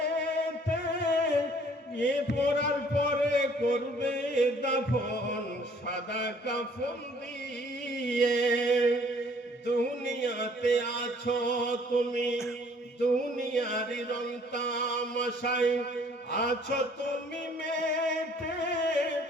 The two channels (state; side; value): normal; both; correlation 0.58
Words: এ পড়ার পরে করবে দাফন সাদা কাফন দিয়ে। দুনিয়াতে আছো তুমি, দুনিয়ার রং তামাশায় আছো তুমি মেতে,